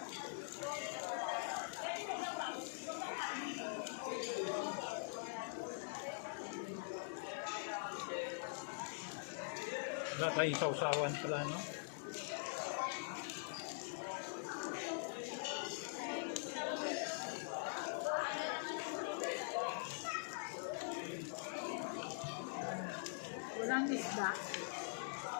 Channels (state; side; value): silent; right; digital silence